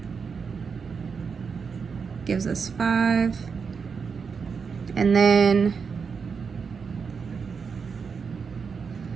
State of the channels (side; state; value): left; quieter; 5.7 dB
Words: gives us 5. And then,